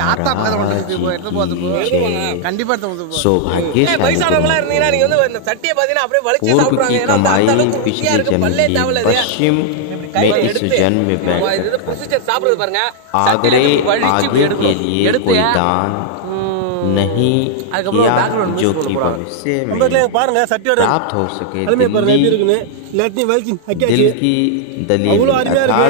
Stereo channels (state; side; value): different; both; correlation -0.01